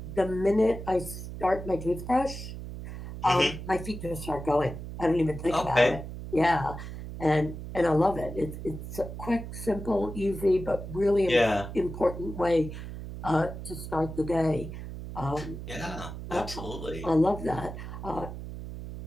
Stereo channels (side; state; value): right; noise; hum, 9 dB below the sound